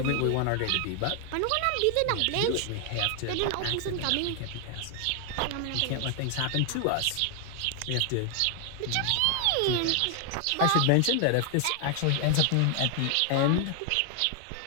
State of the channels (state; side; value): different; both; correlation 0.00